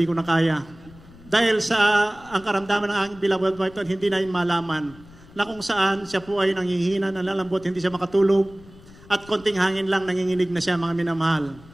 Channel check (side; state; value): left; noise; rumble, 22 dB below the sound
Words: ko na kaya. Dahil sa ang karamdaman ng aking beloved wife, hindi na malaman na kung saan siya po ay nanghihina, nalalambot, hindi siya makatulog, at konting hangin lang, nanginginig na siya, mga minamahal.